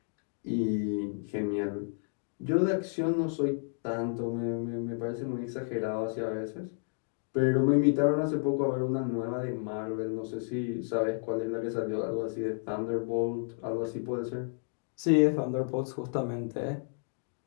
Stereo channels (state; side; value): silent; right; digital silence